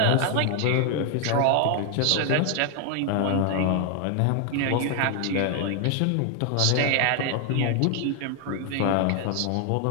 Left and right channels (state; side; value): different; both; correlation 0.00